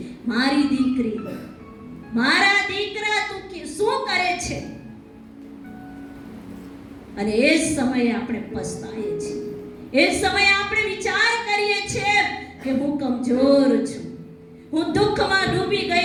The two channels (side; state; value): both; identical; correlation 1.00